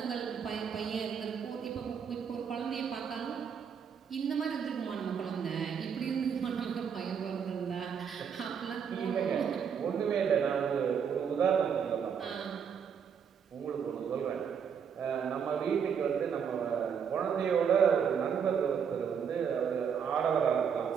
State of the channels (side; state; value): left; quieter; 7.2 dB